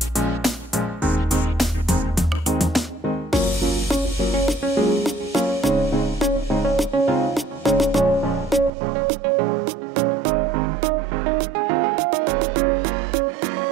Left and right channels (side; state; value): left; drops out; at 8.7 s